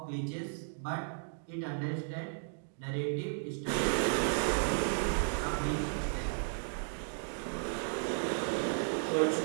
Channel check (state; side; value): silent; left; digital silence